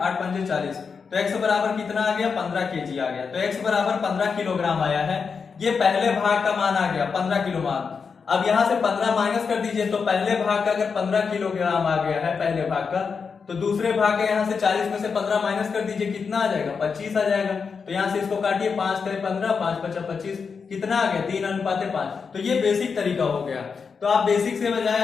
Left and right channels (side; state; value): right; quieter; 5.6 dB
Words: 8 पंजे 40, तो x बराबर कितना आ गया 15 केजी आ गया, तो x बराबर 15 किलोग्राम आया है। ये पहले भाग का मान आ गया 15 किलो मान। अब यहां से 15 माइनस कर दीजिए, तो पहले भाग का अगर 15 किलोग्राम आ गया है पहले भाग का, तो दूसरे भाग का यहां से 40 में से 15 माइनस कर दीजिए, कितना आ जाएगा 25 आ जाएगा, तो यहां से इसको काटिए, 5 करे 15 5 5 25, कितना आ गया 3:5। तो ये बेसिक तरीका हो गया। तो आप बेसिक से बजाय